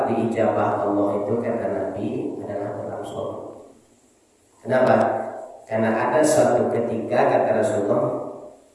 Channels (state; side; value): identical; both; correlation 1.00